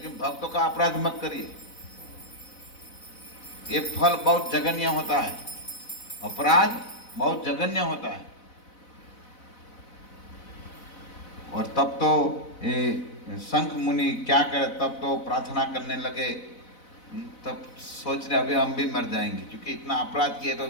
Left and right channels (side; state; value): right; late; 4.0 ms